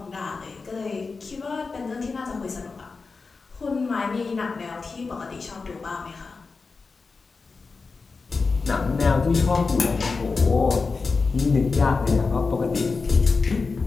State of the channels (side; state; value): right; quieter; 4.4 dB